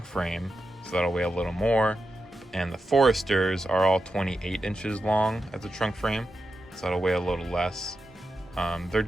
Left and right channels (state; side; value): normal; both; correlation 0.89